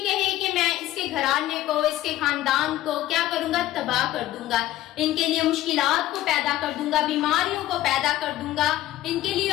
کہے کہ میں اس کے گھرانے کو، اس کے خاندان کو کیا کروں گا؟ تباہ کر دوں گا، ان کے لیے مشکلات کو پیدا کر دوں گا، بیماریوں کو پیدا کر دوں گا، ان کے لیے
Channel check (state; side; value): quieter; right; 14.6 dB